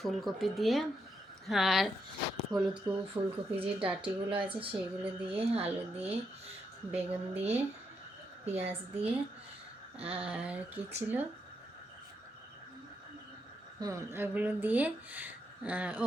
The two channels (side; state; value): both; normal; correlation 0.80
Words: দিয়ে, আর হলুদ ফুলকপি যে ডাঁটিগুলো আছে সেইগুলো দিয়ে, আলু দিয়ে, বেগুন দিয়ে, পেঁয়াজ দিয়ে, আর কি ছিল, ওগুলো দিয়ে, ও